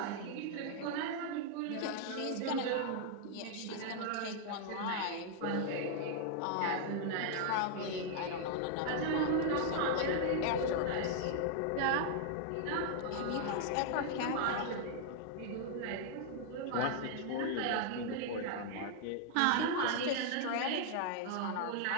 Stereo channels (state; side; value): different; both; correlation 0.00